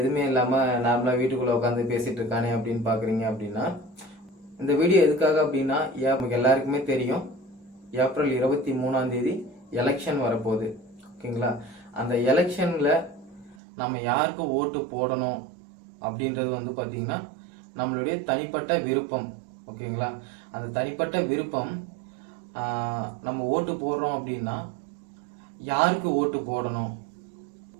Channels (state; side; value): drops out; left; at 13.6 s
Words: இல்லாமல் நார்மலாக வீட்டுக்குள்ளே உட்காந்து பேசிகிட்டு இருக்கானே அப்படின்னு பார்க்குறீங்க அப்படின்னா, இந்த வீடியோ எதுக்காக அப்படின்னா நமக்கு எல்லாருக்குமே தெரியும், ஏப்ரல் 23 எலெக்ஷன் வரப்போகுது. ஓகேங்களா? அந்த எலெக்ஷனில் நம்ம யாருக்கு ஓட்டு போடணும் அப்படின்றது வந்து பார்த்திங்கன்னா நம்மளுடைய தனிப்பட்ட விருப்பம். ஓகேங்களா? அந்த தனிப்பட்ட விருப்பம் நம்ம ஓட்டு போடுறோம் அப்படின்னா யாருக்கு ஓட்டு போடணும்?